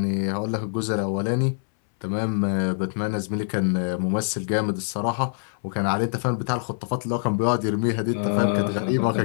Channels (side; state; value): right; silent; 62 dB below the other